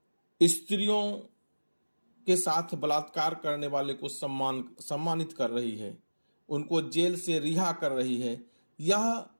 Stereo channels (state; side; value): inverted; both; correlation -1.00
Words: स्त्रियों के साथ बलात्कार करने वाले को सम्मानित कर रही है, उनको जेल से रिहा कर रही है। यह